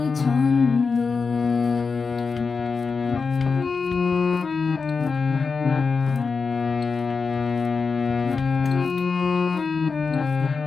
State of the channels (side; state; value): right; quieter; 4.9 dB